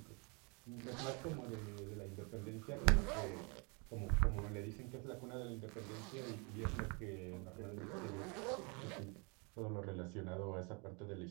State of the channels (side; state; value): left; quieter; 32.6 dB